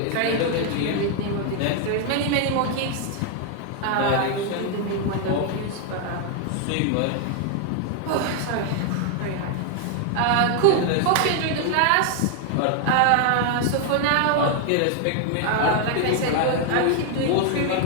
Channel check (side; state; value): both; different; correlation 0.00